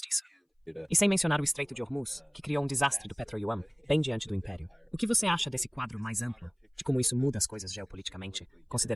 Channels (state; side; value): identical; both; correlation 1.00